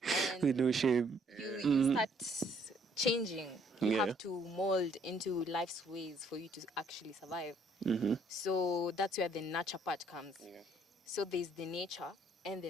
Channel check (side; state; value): both; normal; correlation 0.65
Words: And With no shame. you start changing. You Yeah. have to mold into life's ways for you to actually survive. So that's where the nurture part comes. So there's the nature and